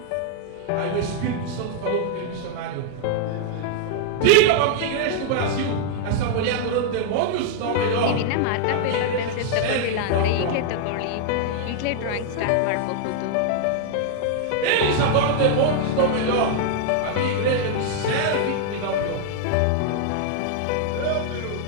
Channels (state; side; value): different; both; correlation 0.00